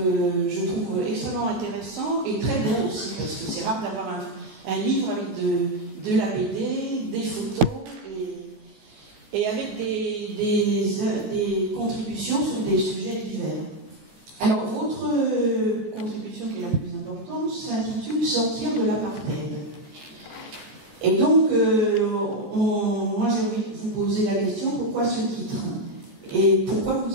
je trouve extrêmement intéressant et très beau aussi, parce que c'est rare d'avoir un livre avec de la BD, des photos et avec des contributions sur des sujets divers. Alors votre contribution qui est la plus importante s'intitule « Sortir de l'apartheid ». Et donc, moi j'ai envie de vous poser la question, pourquoi ce titre? Et pourquoi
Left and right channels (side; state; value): left; late; 14 ms